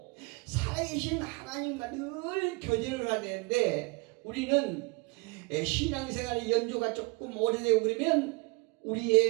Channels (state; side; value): quieter; left; 28.7 dB